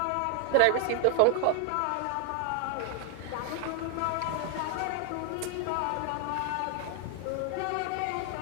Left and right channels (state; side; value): different; both; correlation 0.00